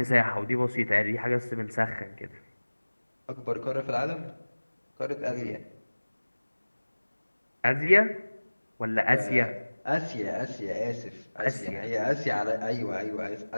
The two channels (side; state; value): both; inverted; correlation -1.00